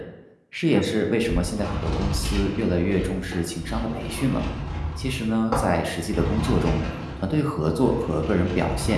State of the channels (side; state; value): both; identical; correlation 1.00